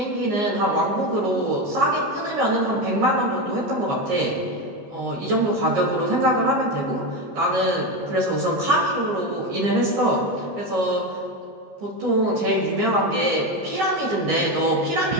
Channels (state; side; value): late; left; 15 ms